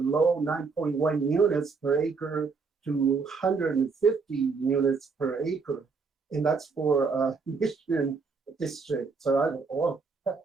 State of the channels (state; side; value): quieter; left; 4.8 dB